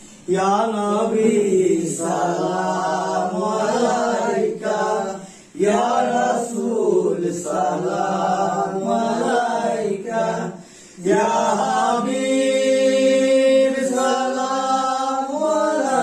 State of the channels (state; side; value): identical; both; correlation 1.00